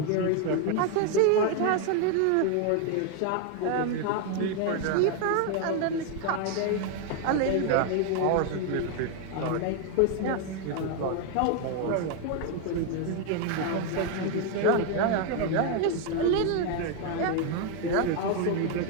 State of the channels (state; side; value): different; both; correlation 0.01